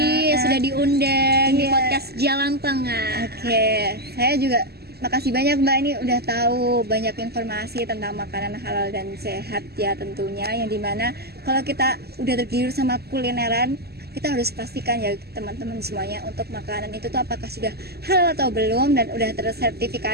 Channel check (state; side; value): late; left; 0.46 ms